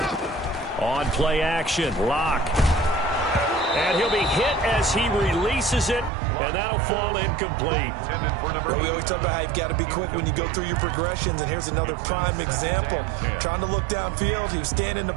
ride. On play action, Lock. And he'll be hit as he releases it, and that'll fall incomplete. Well, we always talk about how you've got to be quick when you go through your progressions, and here's another prime example. Trying to look downfield, he was standing in the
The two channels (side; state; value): left; drops out; at 6.1 s